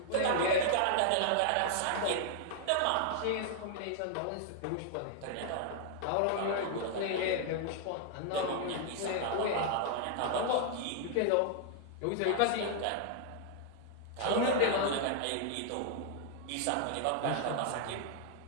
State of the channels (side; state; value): both; different; correlation 0.00